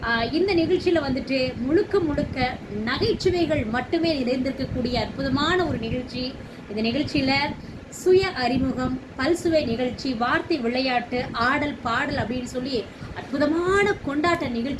இந்த நிகழ்ச்சியில் வந்துட்டு முழுக்க முழுக்க நகைச்சுவைகள் மட்டுமே நிறைந்திருக்கக்கூடிய அற்புதமான ஒரு நிகழ்ச்சி. இந்த நிகழ்ச்சியில் சுய அறிமுகம், பல்சுவை நிகழ்ச்சி, வார்த்தை விளையாட்டு, ஆடல் பாடல் அப்படின்னு சொல்லி அற்புதமான கொண்டாட்ட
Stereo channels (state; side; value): identical; both; correlation 1.00